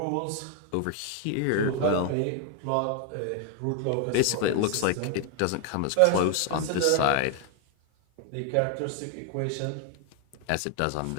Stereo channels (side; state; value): both; different; correlation 0.01